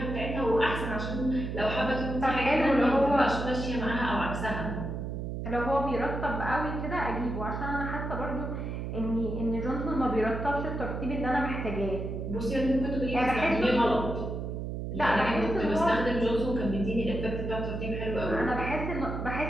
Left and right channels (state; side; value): noise; right; hum, 5 dB below the sound